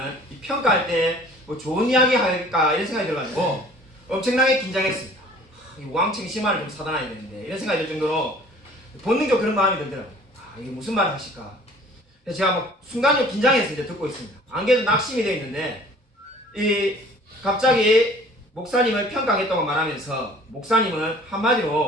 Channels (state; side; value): normal; both; correlation 0.50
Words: 평가할 때 좋은 이야기 할까 이런 생각이 들어가지고 엄청나게 긴장했습니다. 왕창 심한을 좀 사단해야 되는데 이런 생각이 들 정도로 본능적으로 그런 마음이 들더라고요. 이게 무슨 말을 하실까. 그래서 제가 순간적으로 긴장해서 이제 듣고 있습니다. 안 그래도 낙심이 되어 있는데 갑자기 목사님을 평가하겠다고 말하면서 목사님은